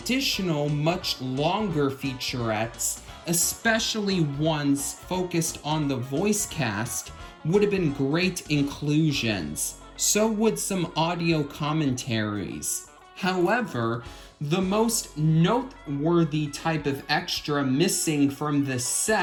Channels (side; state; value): both; identical; correlation 1.00